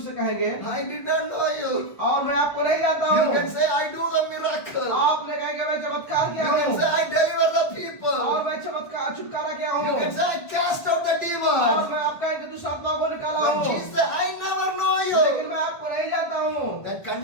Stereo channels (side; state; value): right; late; 1.4 ms